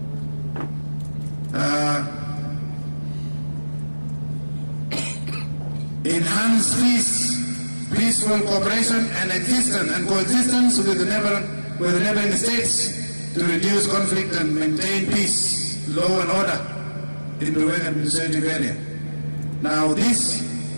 Enhance peace, peaceful cooperation and existence and coexistence with the neighboring states to reduce conflict and maintain peace, law and order in the Ruling administrative area. Now this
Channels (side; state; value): both; inverted; correlation -1.00